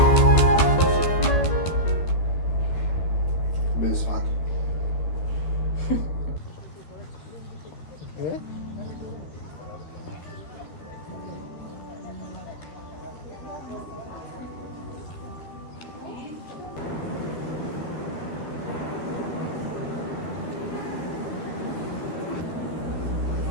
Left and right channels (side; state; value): right; late; 12 ms